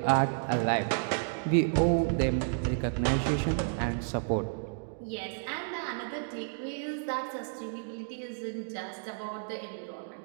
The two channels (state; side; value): silent; left; digital silence